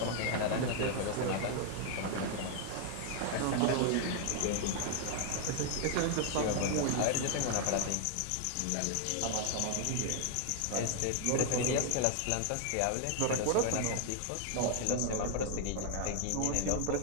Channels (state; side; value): different; both; correlation 0.00